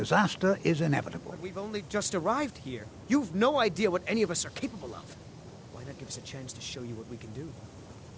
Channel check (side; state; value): both; identical; correlation 1.00